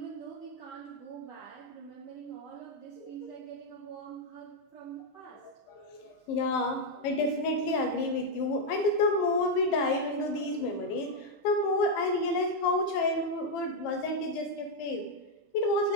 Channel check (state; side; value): late; right; 15 ms